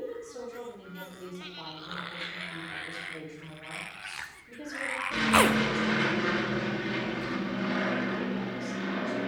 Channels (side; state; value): both; identical; correlation 1.00